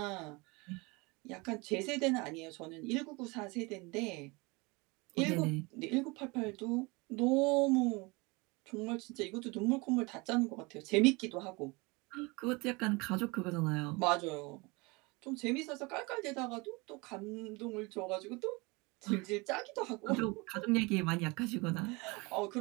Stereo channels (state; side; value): quieter; left; 26.3 dB